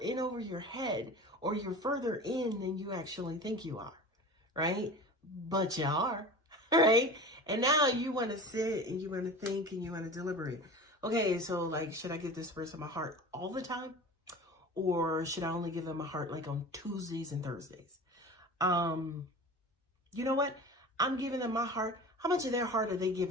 over your head, or you're further in than you actually think you are, right? But you are, right? And now you want to sit and you want to think and you want to deliberate. Okay, so like, should I give this person my heart all the time? Or should I only give them my heart like on Tuesdays and Thursdays? You know what? I'm giving them my heart. How much of their heart are they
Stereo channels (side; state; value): both; normal; correlation 0.35